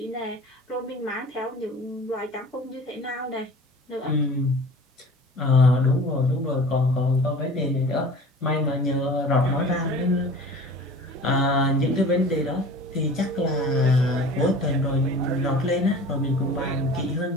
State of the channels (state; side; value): normal; both; correlation 0.42